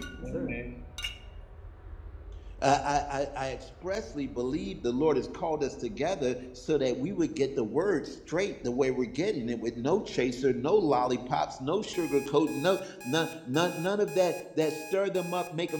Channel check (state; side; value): identical; both; correlation 1.00